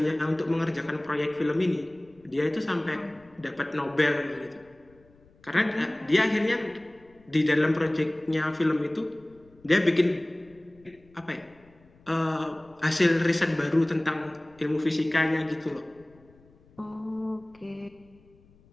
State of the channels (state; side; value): noise; left; rumble, 29 dB below the sound